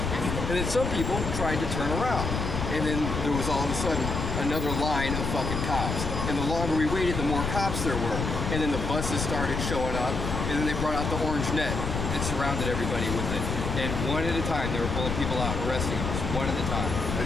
And then some people tried to turn around. And then there was all of a sudden another line of fucking cops. And the longer we waited, the more cops there were. And then the buses started showing up, and then they brought out the orange net and surrounded everybody with it. And one at a time, they were pulling people out, arresting them, one at a time. I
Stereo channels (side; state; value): left; noise; rumble, 3 dB below the sound